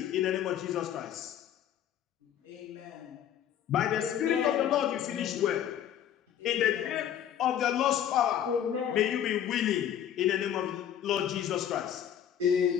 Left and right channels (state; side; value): quieter; right; 10.0 dB